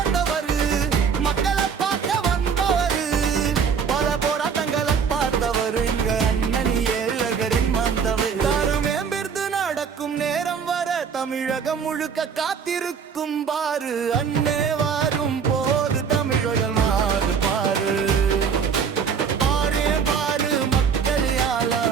மக்களை பார்க்க வந்தவரு, பல போராட்டங்களை பார்த்தவர் எங்க அண்ணனி ஏழகரின் வந்தவர். மேம்பிருந்து நடக்கும் நேரம் வர தமிழகம் முழுக்க காத்திருக்கும் பாரு. அண்ணே வாரும் போது தமிழர்கள் மாறு பாரு.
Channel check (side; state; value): left; quieter; 6.5 dB